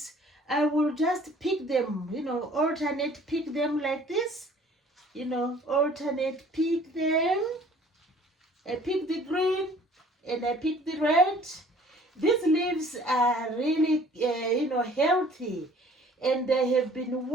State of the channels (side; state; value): both; normal; correlation 0.53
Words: I will just pick them, alternate pick them like this. Alternate pick them. I pick the green and I pick the red. These leaves are really, healthy, and they have been